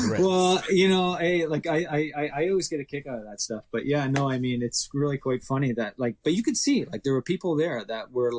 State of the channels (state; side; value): identical; both; correlation 1.00